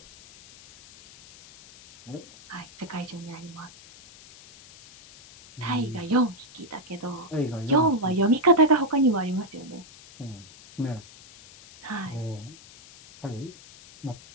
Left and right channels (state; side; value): noise; left; hiss, 21 dB below the sound